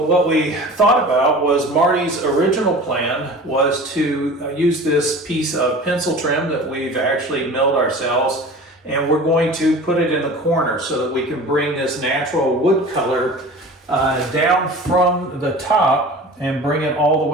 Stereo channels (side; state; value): both; normal; correlation 0.39